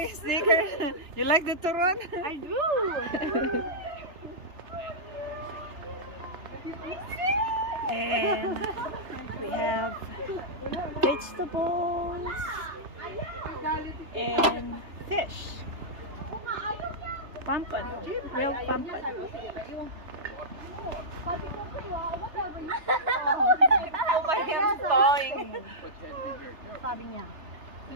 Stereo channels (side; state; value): left; late; 3.4 ms